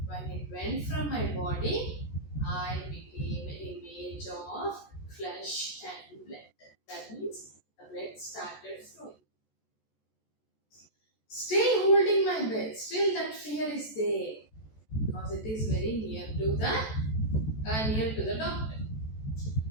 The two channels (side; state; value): right; late; 14 ms